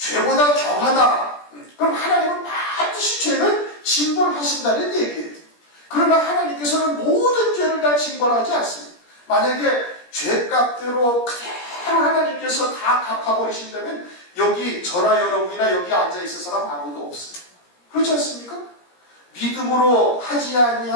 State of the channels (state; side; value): late; right; 17 ms